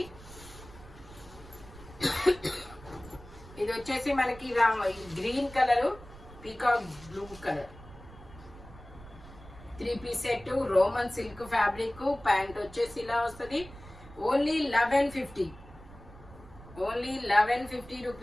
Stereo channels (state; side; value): noise; right; rumble, 18 dB below the sound